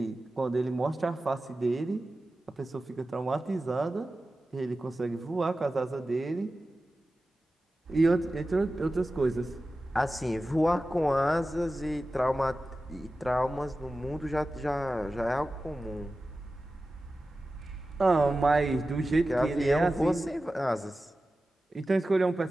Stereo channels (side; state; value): both; normal; correlation 0.94